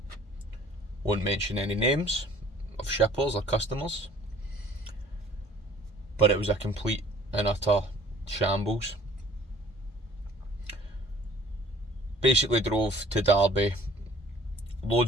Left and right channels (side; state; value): both; normal; correlation 0.53